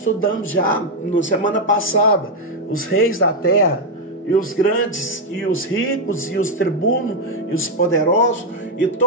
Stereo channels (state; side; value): normal; both; correlation 0.02